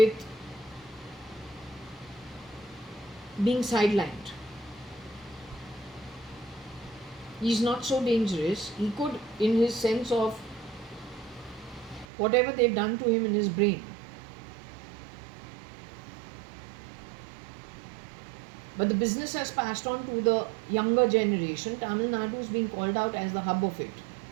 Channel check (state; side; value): drops out; left; at 12.1 s